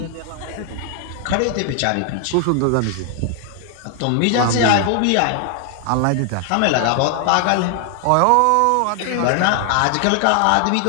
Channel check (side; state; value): both; different; correlation 0.00